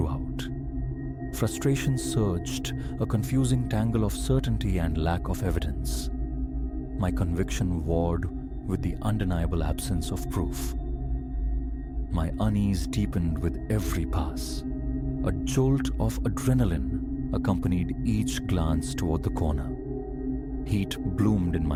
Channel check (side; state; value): both; identical; correlation 1.00